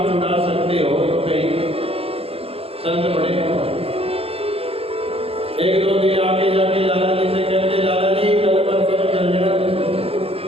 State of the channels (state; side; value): late; left; 0.28 ms